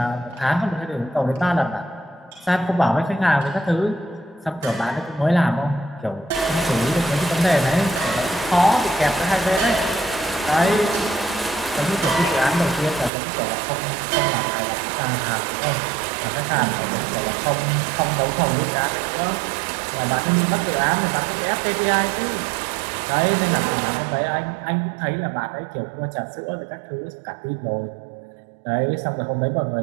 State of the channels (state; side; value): drops out; left; at 13.1 s